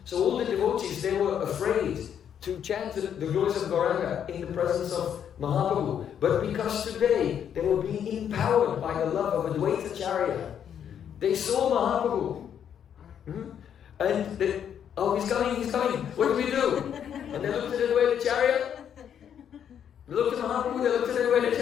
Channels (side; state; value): right; quieter; 8.8 dB